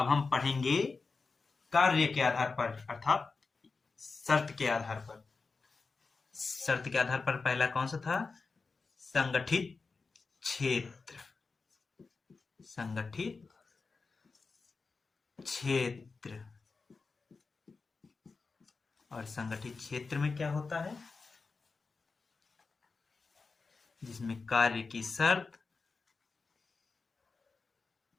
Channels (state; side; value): quieter; right; 4.3 dB